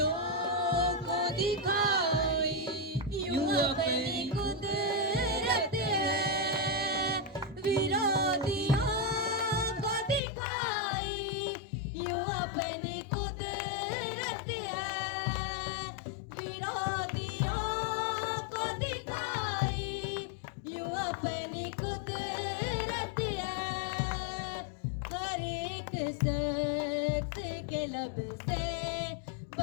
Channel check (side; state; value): right; drops out; at 10.2 s